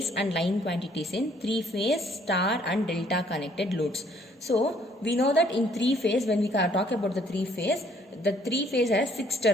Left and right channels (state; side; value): normal; both; correlation 0.63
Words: and line quantities in three-phase, star and delta connected loads. So, we know that in three-phase, when we talk about the three-phase has 6